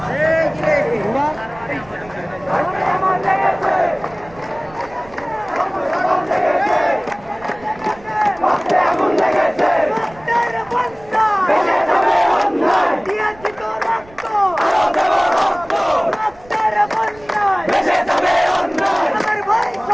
এই কি রে ঘোড়া আমার লেগেছে আগুন লেগেছে রক্তের বন্যা ভেসে যাবে অন্যায় দিয়েছি তো রক্ত আরো দেব রক্ত রক্তের বন্যায় ভেসে যাবে অন্যায় আমার ভাই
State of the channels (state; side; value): noise; right; rumble, 23 dB below the sound